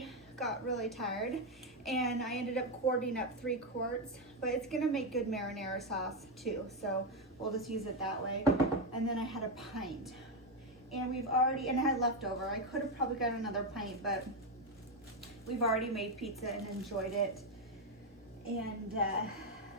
got really tired and I ended up quarting up 3 quarts, but it's gonna make good marinara sauce too, so we'll just use it that way. And then I had a pint, and I had leftover. I could have probably got another pint, but we've already made pizza and enjoyed it. And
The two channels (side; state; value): both; normal; correlation 0.06